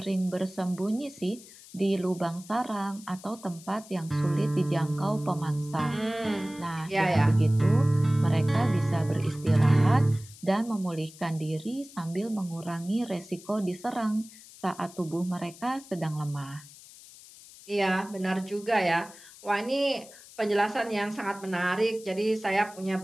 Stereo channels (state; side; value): noise; left; hiss, 20 dB below the sound